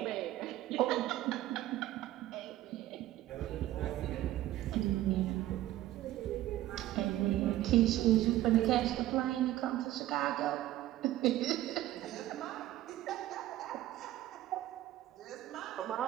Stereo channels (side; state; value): left; quieter; 14.5 dB